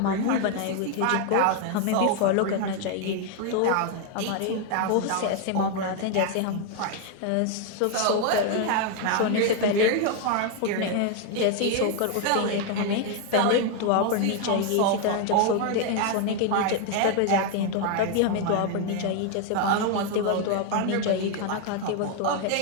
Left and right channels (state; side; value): different; both; correlation 0.01